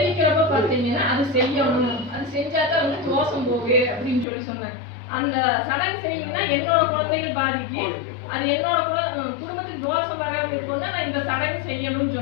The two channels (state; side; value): drops out; right; at 4.2 s